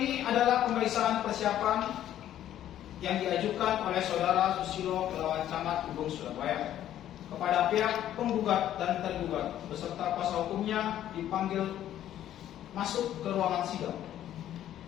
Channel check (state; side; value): quieter; right; 11.7 dB